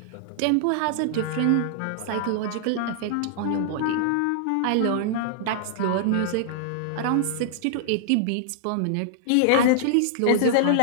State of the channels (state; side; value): different; both; correlation -0.01